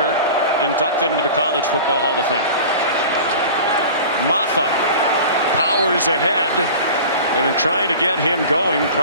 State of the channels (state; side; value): inverted; both; correlation -0.38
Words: inducted into the College Football Hall of Fame. Maffa powers ahead, and in trying to get him going,